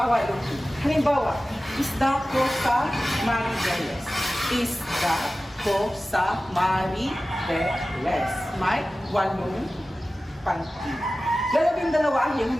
Halimbawa, isda ko sa Maribeles. Isda ko sa Maribeles. May 8 pantig. 12 ang iyong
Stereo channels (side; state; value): both; normal; correlation 0.96